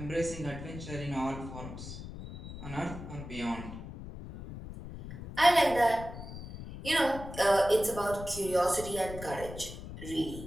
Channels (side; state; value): left; noise; rumble, 11 dB below the sound